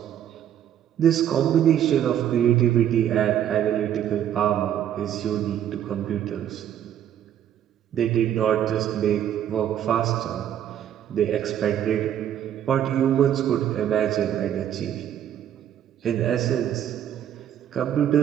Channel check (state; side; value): quieter; left; 10.4 dB